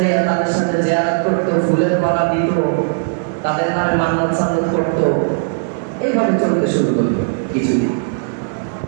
তাদের সাথে জিয়ারত করতো, ফুলের মালা দিত, তাদের নামে মান্নত সান্নত করতো। এইভাবে চলতে শুরু করলো কিছুদিন,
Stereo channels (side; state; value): left; silent; digital silence